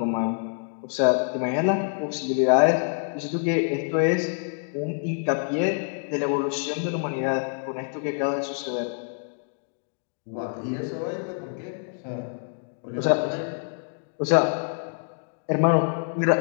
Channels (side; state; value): right; silent; 61 dB below the other